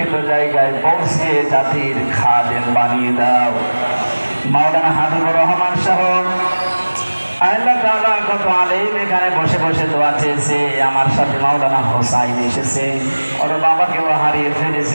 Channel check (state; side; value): inverted; both; correlation -1.00